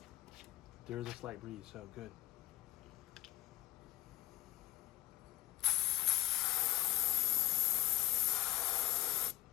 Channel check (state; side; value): quieter; right; 15.6 dB